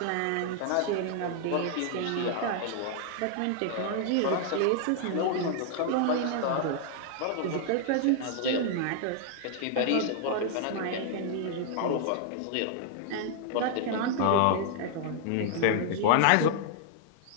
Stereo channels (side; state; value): both; different; correlation 0.00